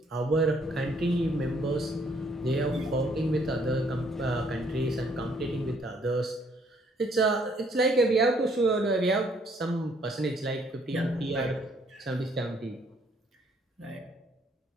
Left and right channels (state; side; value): normal; both; correlation 0.66